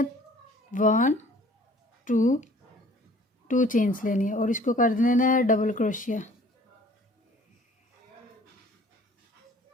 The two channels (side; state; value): both; normal; correlation 0.52